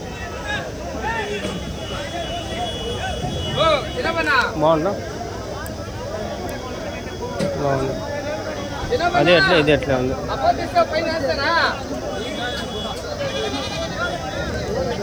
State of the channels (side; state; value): right; noise; hiss, 29 dB below the sound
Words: బాగుందా? బాగుంది. అదే ఎట్లా, ఇది ఎట్లా ఉంది?